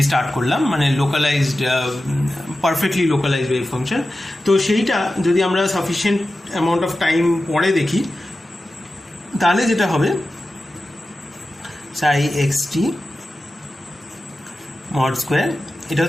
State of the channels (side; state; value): both; normal; correlation 0.93